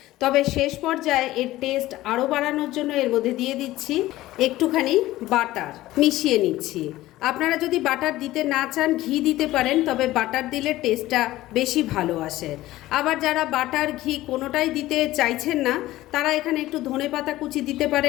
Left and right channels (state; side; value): quieter; right; 16.4 dB